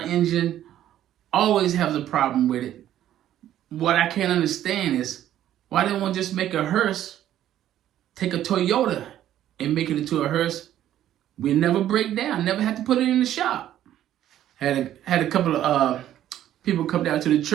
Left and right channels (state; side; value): quieter; left; 11.9 dB